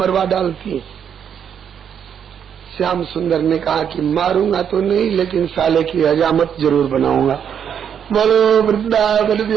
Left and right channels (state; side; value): quieter; left; 8.2 dB